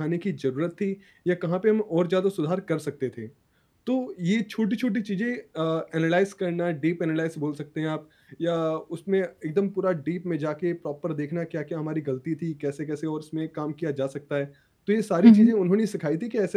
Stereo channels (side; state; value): both; identical; correlation 1.00